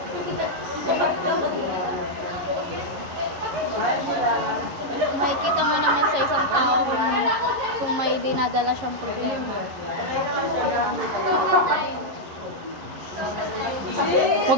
Makikita mo naman sa isang tao kung may dinadala siyang problema.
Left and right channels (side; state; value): left; late; 11 ms